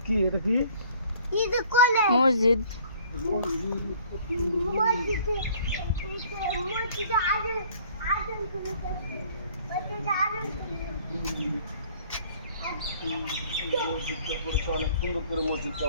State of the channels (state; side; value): inverted; both; correlation -0.55